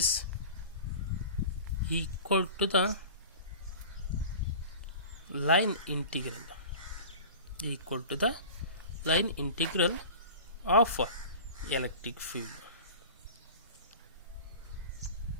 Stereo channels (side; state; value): both; inverted; correlation -0.37